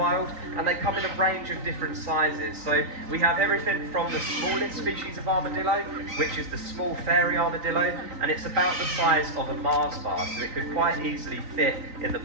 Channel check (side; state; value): left; late; 3.9 ms